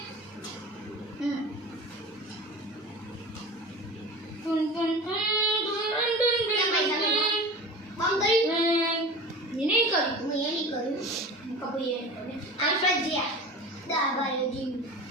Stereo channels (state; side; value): normal; both; correlation 0.34